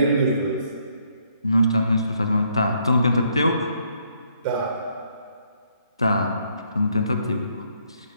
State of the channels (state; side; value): inverted; both; correlation -0.71